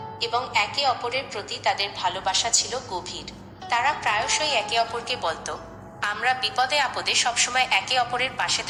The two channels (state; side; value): identical; both; correlation 1.00